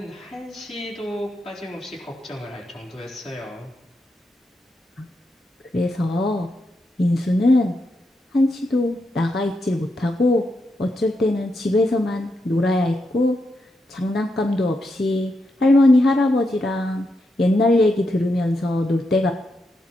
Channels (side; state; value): both; normal; correlation 0.84